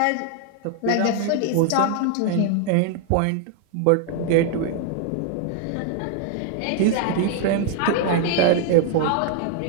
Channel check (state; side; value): different; both; correlation 0.00